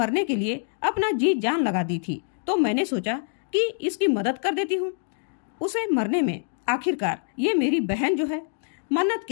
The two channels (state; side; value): silent; right; digital silence